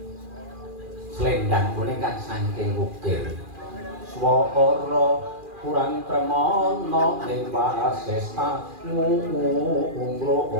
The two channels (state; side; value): late; left; 2.4 ms